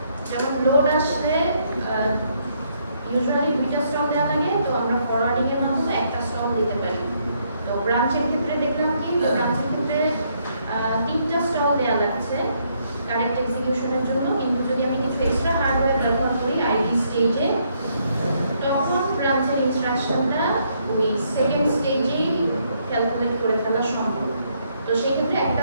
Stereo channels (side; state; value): both; inverted; correlation -0.72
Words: যেমন লোড আসলে ইউজুয়ালি 2টা স্টল দেওয়া লাগে, তো আমরা ফরওয়ার্ডিং এর মাধ্যমে একটা স্টল দিতে পারি। তো ব্রাঞ্চের ক্ষেত্রে দেখলাম কি, তো ব্রাঞ্চের ক্ষেত্রে 3টা স্টল দেওয়া লাগছে কারেক্ট এক্সিকিউশনের জন্য, কিন্তু যদি আমি কিছু এক্সট্রা হার্ডওয়্যার ব্যবহার করি আইডি স্টেজে, তখন ব্রাঞ্চের ইনস্ট্রাকশনটা ওই সেকেন্ড স্টেজেই ক্যালকুলেট করে ফেলা সম্ভব। তো সেই ক্ষেত্রে একটা